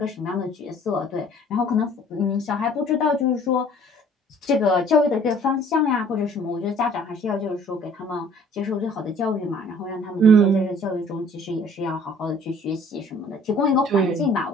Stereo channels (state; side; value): normal; both; correlation 0.54